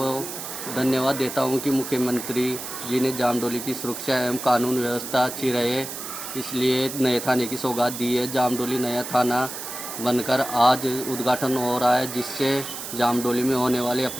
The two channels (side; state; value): right; noise; hiss, 8 dB below the sound